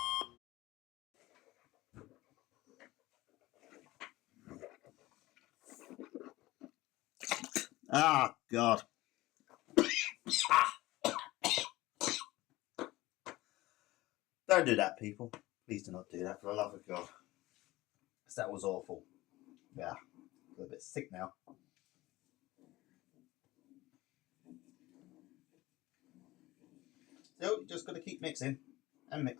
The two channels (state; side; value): quieter; right; 18.5 dB